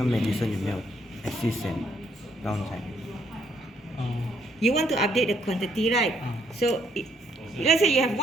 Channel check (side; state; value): both; normal; correlation 0.70